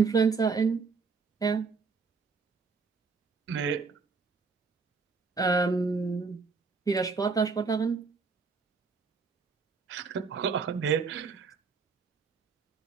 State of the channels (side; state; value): left; quieter; 4.9 dB